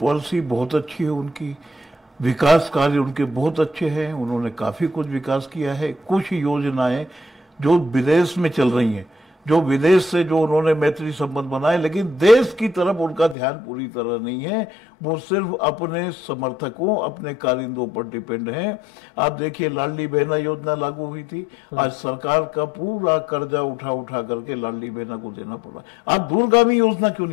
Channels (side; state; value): right; drops out; at 13.4 s